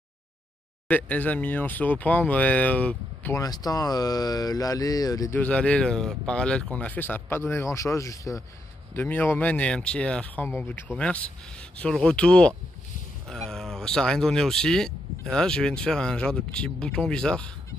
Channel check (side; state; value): both; normal; correlation 0.80